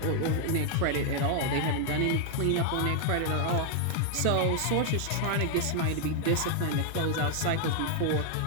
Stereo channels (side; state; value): both; different; correlation 0.00